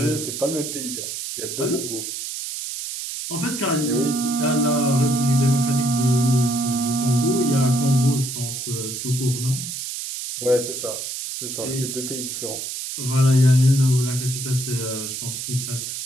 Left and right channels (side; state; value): right; noise; hiss, 6 dB below the sound